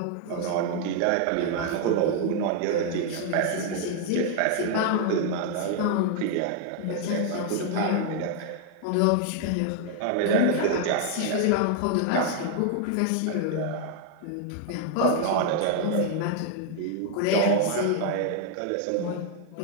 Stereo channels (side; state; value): both; different; correlation 0.00